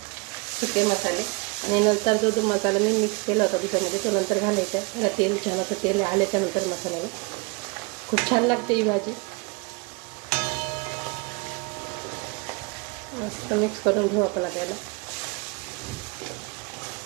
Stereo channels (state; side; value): quieter; left; 30.3 dB